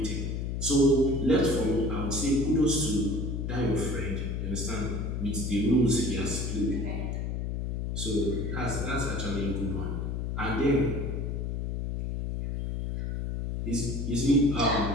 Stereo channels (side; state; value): left; noise; hum, 2 dB below the sound